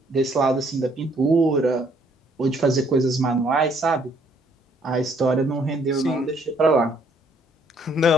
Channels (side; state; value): both; normal; correlation 0.65